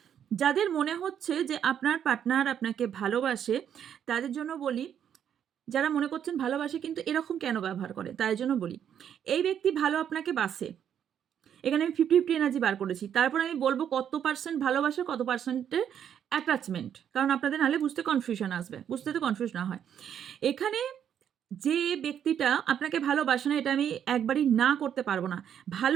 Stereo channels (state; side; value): quieter; left; 9.0 dB